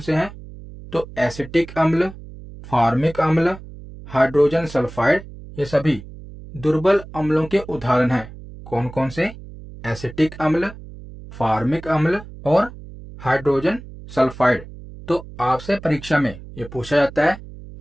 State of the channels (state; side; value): noise; right; hum, 15 dB below the sound